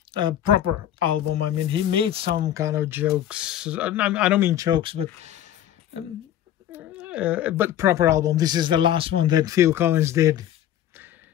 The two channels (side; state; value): right; quieter; 11.3 dB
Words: proper album. I mean, he made some kind of jokes. I don't mean jokes, but proper album. This is the last one that Phil Collins did.